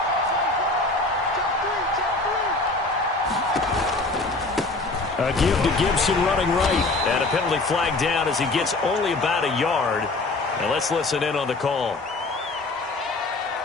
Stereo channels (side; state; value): right; quieter; 3.2 dB